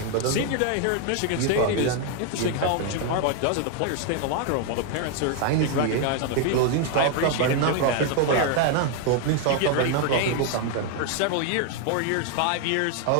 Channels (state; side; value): different; both; correlation 0.00